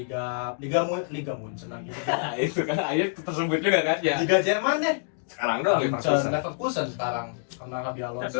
Munchen lagi. Nah, itu kan akhirnya tersebut juga kan ya. Liga Jerman deh. Sekarang doang Leverkusen sekarang karena Xabi Tapi Alonso.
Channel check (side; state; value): right; silent; digital silence